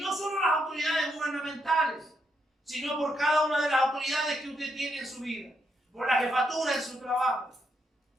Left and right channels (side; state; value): both; normal; correlation 0.79